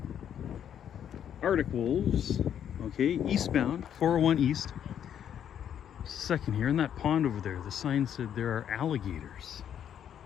Arctic wolves. Okay, eastbound, 401 east. Second here, in that pond over there, the sign said there are alligators.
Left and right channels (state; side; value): quieter; right; 9.3 dB